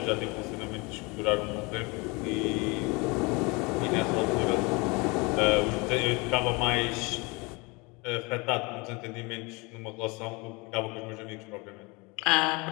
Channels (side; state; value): right; quieter; 27.3 dB